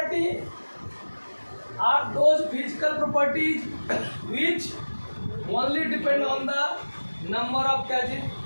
are those physical properties which only depend on the number of क्या चीज,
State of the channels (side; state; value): both; inverted; correlation -1.00